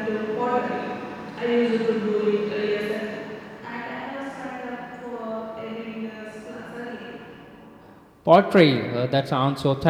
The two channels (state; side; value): identical; both; correlation 1.00